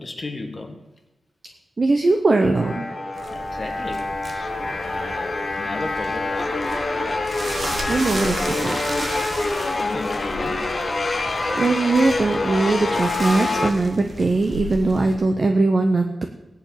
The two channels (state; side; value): normal; both; correlation 0.92